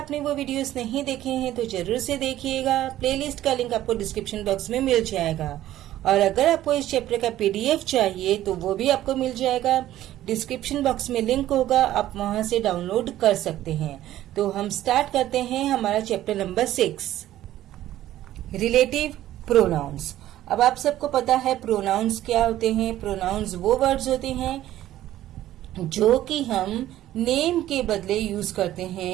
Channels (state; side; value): quieter; left; 13.6 dB